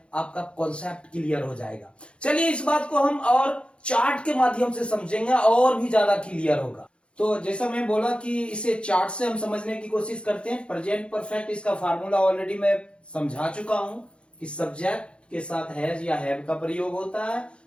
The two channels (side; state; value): right; late; 0.057 ms